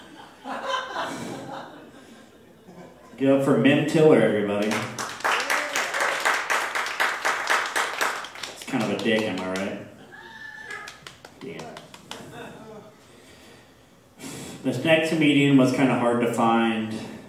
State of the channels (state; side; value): identical; both; correlation 1.00